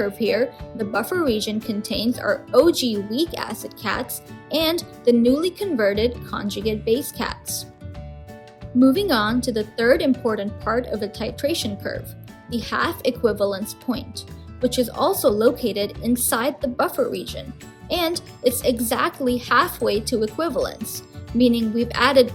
here, the buffer region contains our OG weak acid cats and the newly converted conjugate base cats. Moving on to the third important part of a titration curve, the half equivalence point, which is also located inside the buffer region, and it's exactly halfway to equivalence, meaning we've added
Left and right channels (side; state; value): both; identical; correlation 1.00